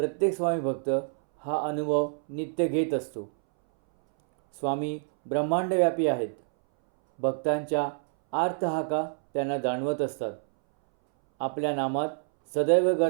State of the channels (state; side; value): silent; left; 60 dB below the other